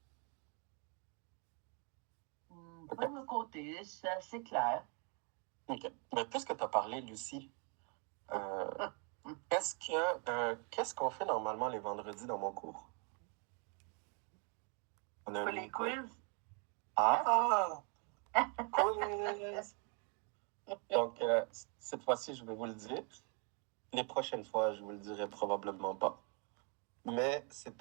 Pas de mon côté, c'est assez clair. OK. Mais puisque tu as parlé, Lucie, qu'est-ce qu'on fait normalement les vendredis dans mon cours? On a Pas un les quiz. Ah! Quiz! Donc, cette fois-ci, je vais vous le dire. Les prochaines fois, je vous le dirai probablement pas. Mais c'est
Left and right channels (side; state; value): left; quieter; 36.8 dB